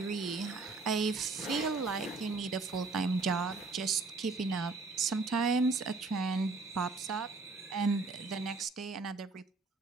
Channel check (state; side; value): quieter; left; 3.9 dB